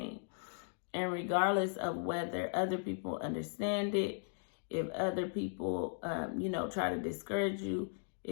And regardless of whether other people understand it, if other people, you know, try to discourage you,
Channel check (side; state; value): right; silent; digital silence